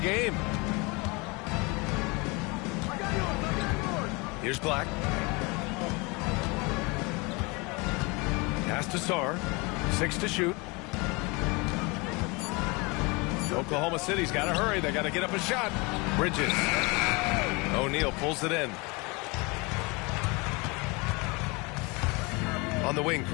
game. Here's Black. Pass to Sarr. 6 to shoot. Oklahoma City's got to hurry. They got to get up a shot. Bridges. O'Neal pulls it in. On the wing,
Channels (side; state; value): right; quieter; 27.3 dB